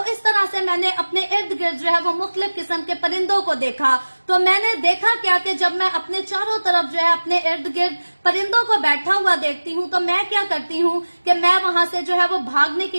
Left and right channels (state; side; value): inverted; both; correlation -1.00